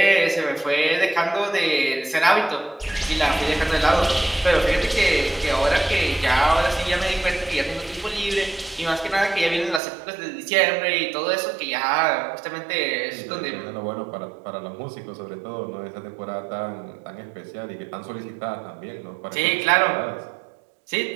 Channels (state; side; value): drops out; left; at 9.8 s